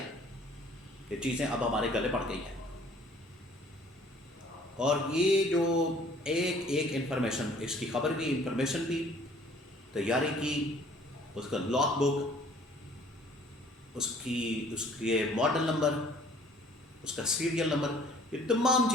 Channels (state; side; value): normal; both; correlation 0.55